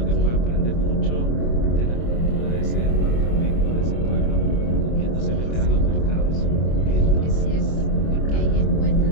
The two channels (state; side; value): late; right; 25 ms